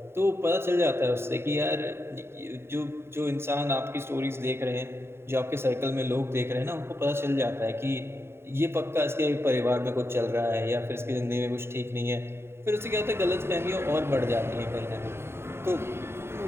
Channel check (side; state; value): left; late; 0.12 ms